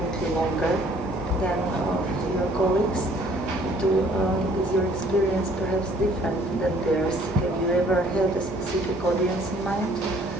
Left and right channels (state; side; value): normal; both; correlation 0.58